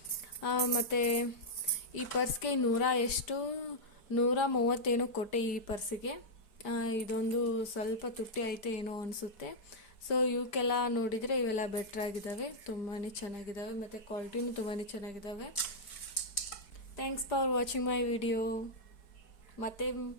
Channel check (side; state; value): right; late; 4.6 ms